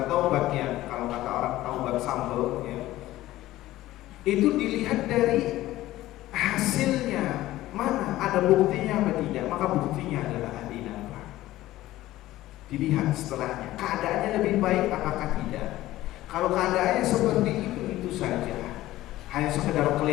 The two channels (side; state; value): right; quieter; 15.8 dB